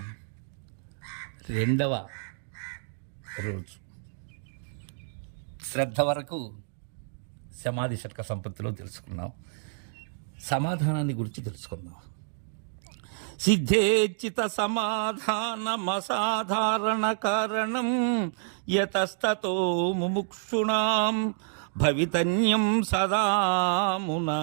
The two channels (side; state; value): left; silent; digital silence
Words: రెండవ రోజు శ్రద్ధ వరకు సమాధి షట్క సంపత్తిలో తెలుసుకున్నాం. సమాధానాన్ని గురించి తెలుసుకుందాం. సిద్ధేచిత సమాధానమసాధారణ కారణం యతస్తతో ముముక్షుణాం భవితన్యం సదామునా.